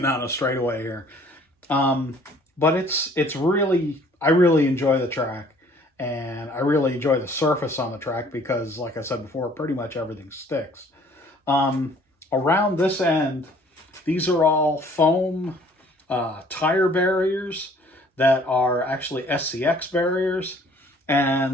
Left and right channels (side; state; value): both; normal; correlation 0.56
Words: of straightaway here. But it's really, I really enjoy the track, and I really enjoy the surface on the track because, like I said before, pretty much everything sticks. Around this end, these are all foam tire barriers that are actually SCX barriers,